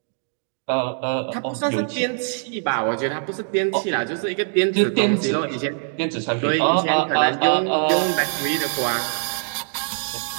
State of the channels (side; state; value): left; silent; 64 dB below the other